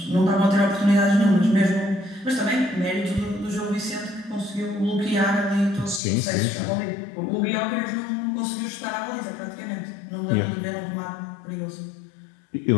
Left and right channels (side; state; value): right; drops out; at 6.0 s